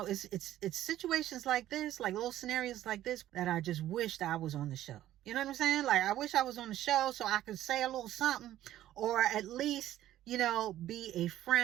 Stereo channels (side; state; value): left; quieter; 13.2 dB